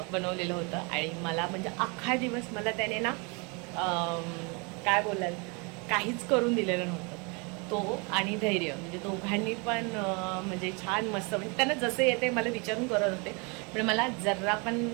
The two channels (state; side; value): quieter; left; 31.3 dB